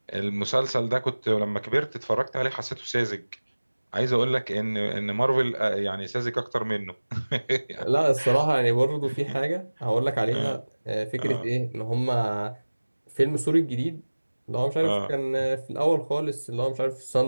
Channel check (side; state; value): both; inverted; correlation -1.00